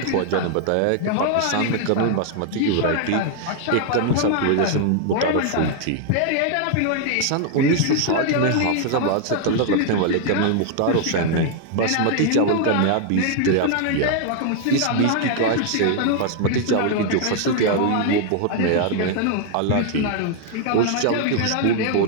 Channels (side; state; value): both; different; correlation 0.00